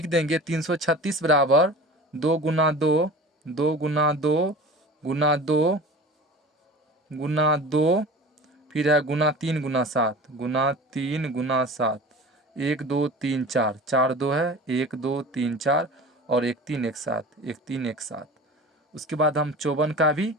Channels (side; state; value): both; normal; correlation 0.38